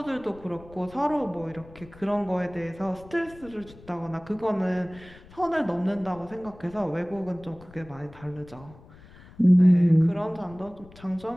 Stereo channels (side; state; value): left; noise; rumble, 21 dB below the sound